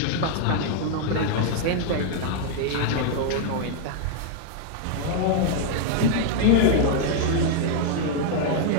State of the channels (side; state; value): both; different; correlation 0.00